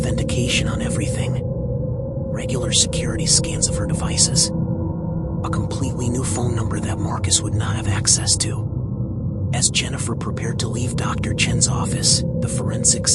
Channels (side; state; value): both; identical; correlation 1.00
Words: on everything. Regular security scans of her devices. A completely new phone number that Marcus would not have access to. As Jennifer prepared to leave Dr. Chen's office, the forensics